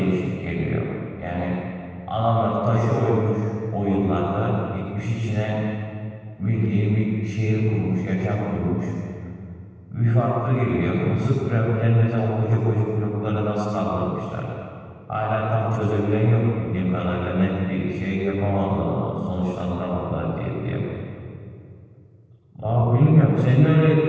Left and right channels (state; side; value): identical; both; correlation 1.00